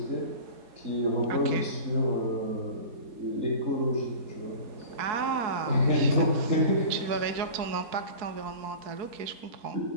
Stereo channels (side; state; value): left; late; 4.6 ms